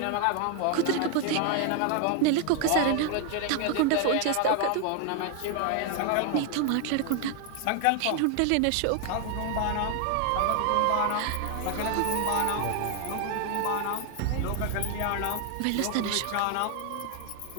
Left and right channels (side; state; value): both; different; correlation 0.00